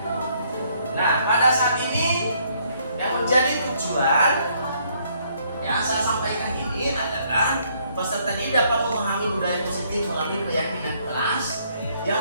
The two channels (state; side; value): inverted; both; correlation -0.68